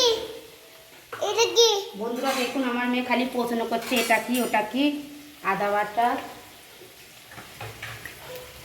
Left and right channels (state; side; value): identical; both; correlation 1.00